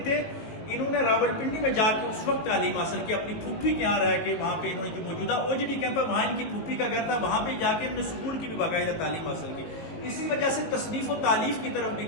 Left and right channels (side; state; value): right; late; 18 ms